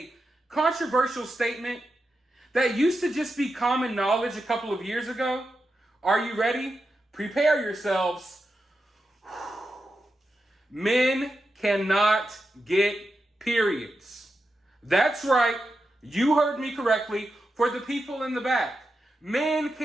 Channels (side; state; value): both; normal; correlation 0.88